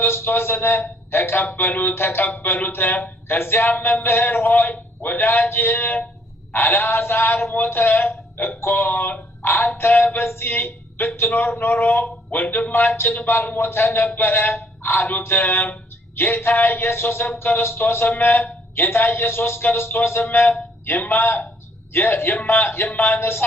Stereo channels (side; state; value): both; normal; correlation 0.65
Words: ተቀበሉት። ከዚያም መምህር ሆይ ወዳጅ አልዓዛር ሞተ እኮ፣ አንተ በዚህ ብትኖር ኖሮ ወንድማችን ባልሞተ ነበረ አሉት። ጌታ ኢየሱስ ክርስቶስም የማነሳ